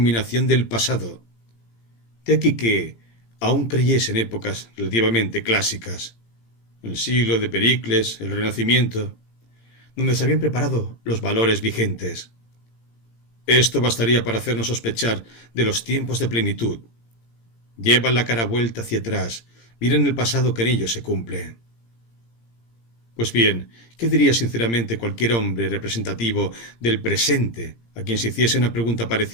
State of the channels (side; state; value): right; late; 17 ms